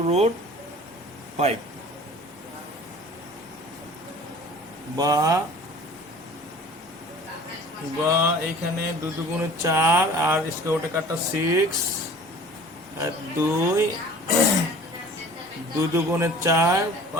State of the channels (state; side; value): normal; both; correlation 0.45